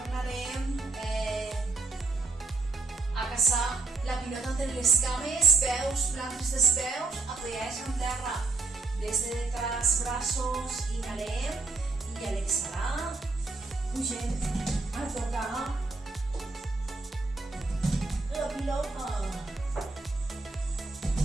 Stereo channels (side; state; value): left; quieter; 3.6 dB